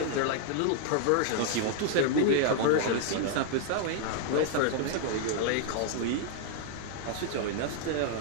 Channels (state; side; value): different; both; correlation 0.00